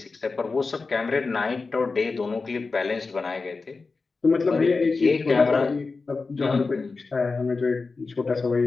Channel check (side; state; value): right; quieter; 4.1 dB